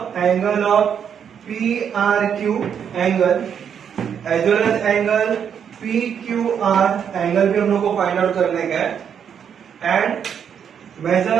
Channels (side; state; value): left; quieter; 7.9 dB